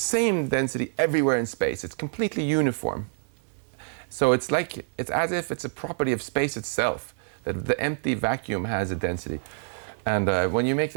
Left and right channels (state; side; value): silent; left; digital silence